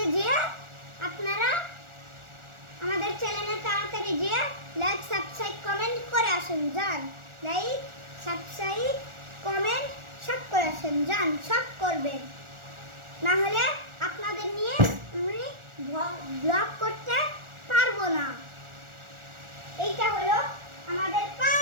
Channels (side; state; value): left; late; 1.4 ms